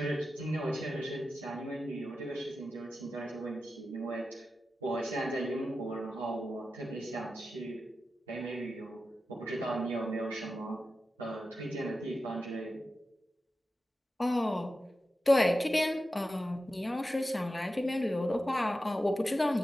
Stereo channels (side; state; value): both; normal; correlation 0.91